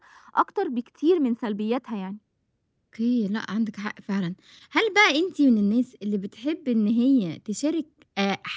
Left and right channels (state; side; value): identical; both; correlation 1.00